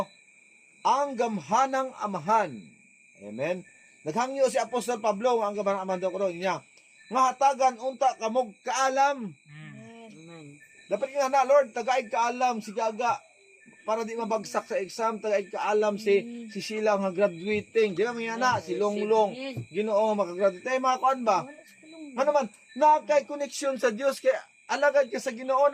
Ang gamhanang amahan. Amen? Naghangyo si Apostol Pablo, ang gamhanang amahan daw ko niya. Nga hatagan unta kamog kaalam. Dapat nga na, Lord, tagaig kaalam si Gaga para di mabagsak sa exam, tagaig kaalam si Sheila nga graduating. Di ba mga na, si Longlong, Ginoo makagraduate. Tayo mga kuan ba? Ano man, nakay connection sa Dios, kay alagad ka sa Ginoo,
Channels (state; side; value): identical; both; correlation 1.00